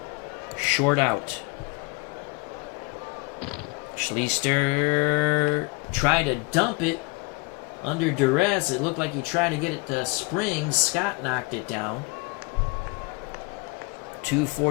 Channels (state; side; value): quieter; right; 26.9 dB